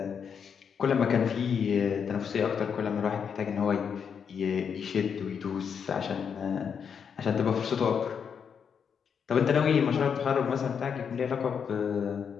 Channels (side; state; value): right; quieter; 7.0 dB